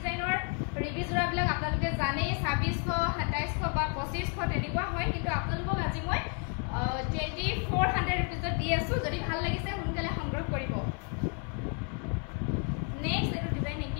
ৰিভি জোৰাবিলাক আপোনালোকে জানে 2600 2700 বা 2500 তেনেকুৱা হয় কিন্তু আপোনালোকক আজি মই 2400 रुपीजত দি আছো যদি ভাল লাগিছে সোনকালে সংগ্ৰহ কৰিব নেক্সট এটো ডিজাইন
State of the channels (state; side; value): quieter; right; 39.7 dB